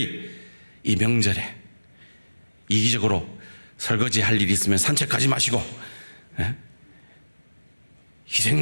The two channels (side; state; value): both; inverted; correlation -1.00